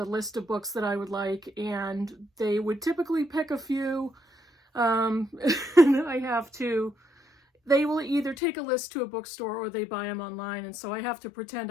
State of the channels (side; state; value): right; drops out; at 8.3 s